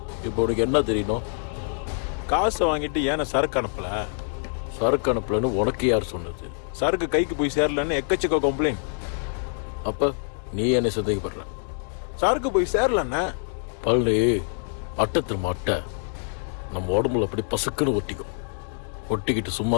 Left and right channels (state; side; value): silent; right; 61 dB below the other